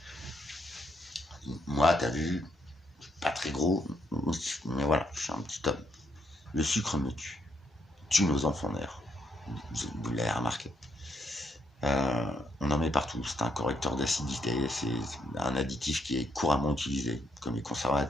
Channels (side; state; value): both; normal; correlation 0.76